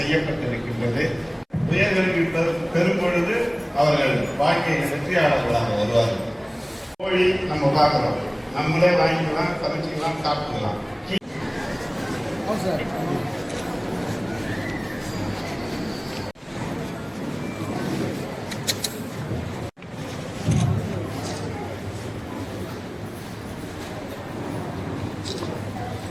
உயர்கல்வி பெறும் பொழுது அவர்கள் வாழ்க்கையில் வெற்றியாளர்களாக வருவார்கள். கோழி நம்ம பார்க்கிறோம், நம்மளே வாங்கிக்கலாம், சமைச்சிக்கலாம், சாப்பிட்டுக்கலாம்.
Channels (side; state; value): both; identical; correlation 1.00